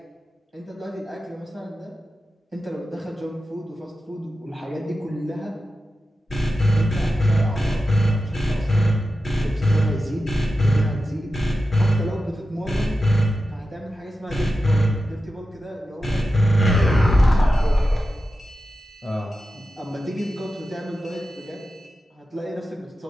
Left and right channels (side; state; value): both; normal; correlation 0.92